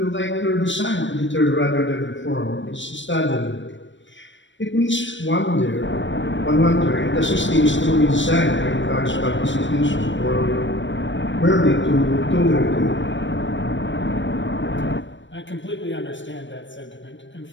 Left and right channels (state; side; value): late; right; 0.54 ms